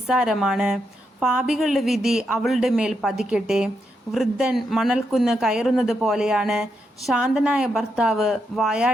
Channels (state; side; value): normal; both; correlation 0.82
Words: പാപികളുടെ വിധി അവളുടെ മേൽ പതിക്കട്ടെ. വൃദ്ധൻ മണൽക്കുന്ന് കയറുന്നത് പോലെയാണ് ശാന്തനായ ഭർത്താവ്